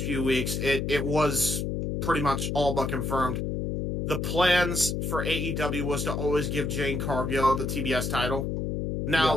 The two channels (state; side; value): noise; left; hum, 2 dB below the sound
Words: few weeks, it was pretty much all but confirmed. The plans for AEW was to always give Jane Cargill the TBS title.